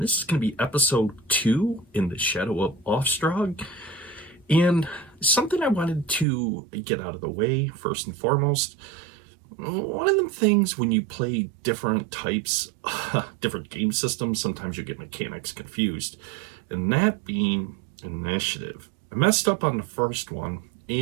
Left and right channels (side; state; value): left; drops out; at 6.2 s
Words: this is going to be episode 2 in the Shadow of Aufstrag. And something I wanted to get out of the way, first and foremost, one of them things when you play different types, different game systems, sometimes you get mechanics confused, and that being initiative. I messed up on the first one,